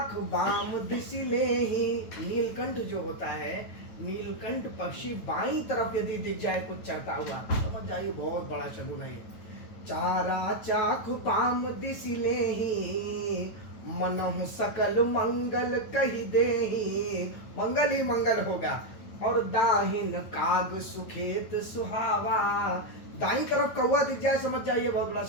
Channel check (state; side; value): late; right; 9.2 ms